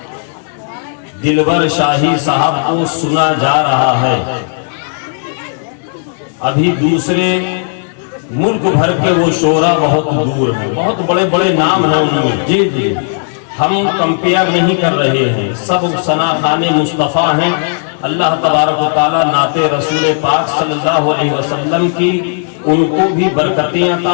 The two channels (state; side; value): silent; right; digital silence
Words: دلور شاہی صاحب کو سنا جا رہا ہے، ابھی دوسرے ملک بھر کے وہ شعراء بہت دور ہیں، بہت بڑے بڑے نام ہیں ان میں۔ جی جی، ہم کمپیئر نہیں کر رہے ہیں، سب ثنا خوان مصطفیٰ ہیں۔ اللہ تبارک و تعالیٰ نعت رسول پاک صلی اللہ علیہ وسلم کی ان کو بھی برکتیں